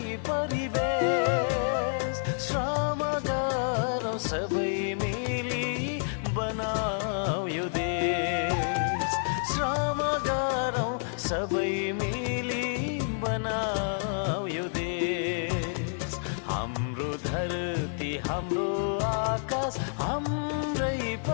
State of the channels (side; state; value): right; silent; digital silence